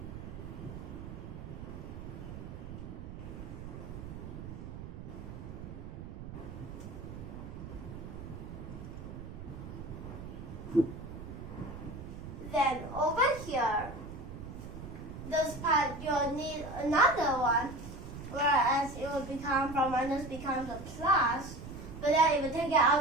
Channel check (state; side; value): noise; right; rumble, 10 dB below the sound